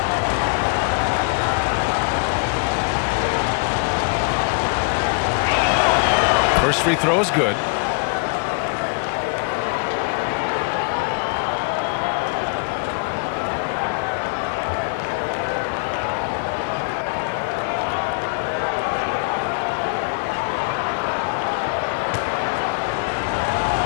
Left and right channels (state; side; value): quieter; right; 36.2 dB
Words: First free throw is good.